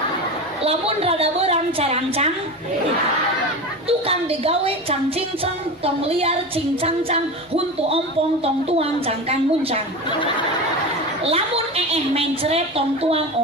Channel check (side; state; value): both; normal; correlation 0.26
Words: Lamun rada beurang carancang tukang digawe cang cincang tong liar cincang cang huntu ompong tong tuang cangkang muncang lamun mencret tong tuang